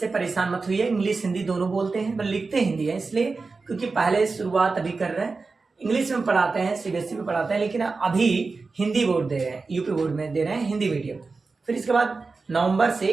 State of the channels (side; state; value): left; quieter; 4.1 dB